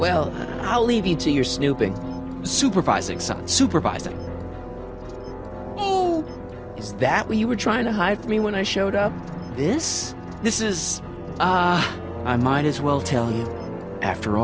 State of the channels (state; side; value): identical; both; correlation 1.00